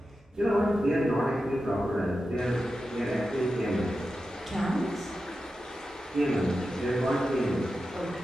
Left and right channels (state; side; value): normal; both; correlation 0.91